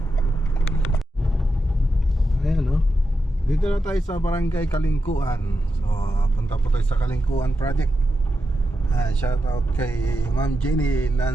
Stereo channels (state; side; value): normal; both; correlation 0.87